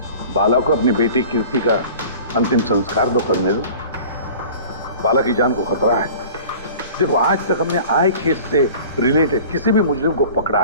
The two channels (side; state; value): both; inverted; correlation -0.43